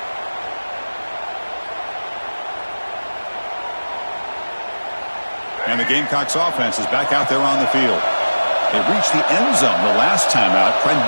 And the Gamecocks offense is back out there on the field. They reached the end zone the last time out, trying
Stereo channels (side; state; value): both; inverted; correlation -1.00